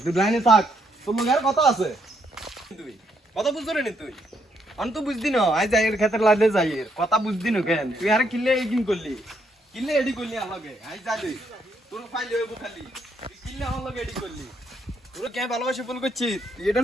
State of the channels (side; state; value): both; normal; correlation 0.74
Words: তুই লাইনে থাক তোর লগে আর কথা আছে তুই কথা বুঝছ রে তুই অন তো বুঝদি না আই যাই এর ক্ষেত্রে লাইনে যাই কথা বুঝদি না কেন তুই আর কিলে এডিং করলি কিলে এডি করলি আমার লগে আই যা তুই তোর ফাইল হইব খালি তুই কিলে আমার লগে এডি করলি তোর কে ভালোবাসে ফোন করছিস তুই